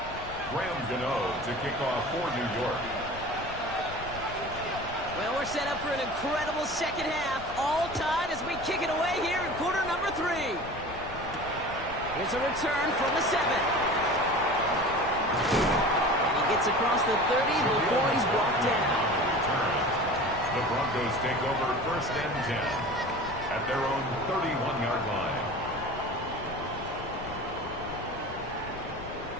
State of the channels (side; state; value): left; noise; rumble, 14 dB below the sound